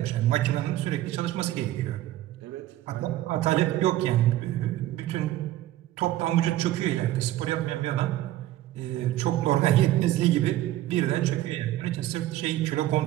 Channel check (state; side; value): quieter; left; 14.6 dB